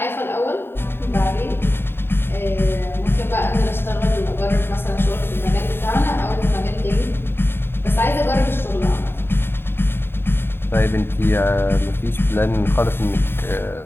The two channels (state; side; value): late; right; 0.11 ms